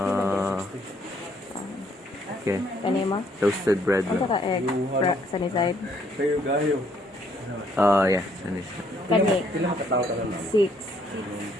Okay. Kanima? Toasted bread. Ano ka egg? Sunny side? Yeah. Sunny side. Kani?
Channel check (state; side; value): normal; both; correlation 0.67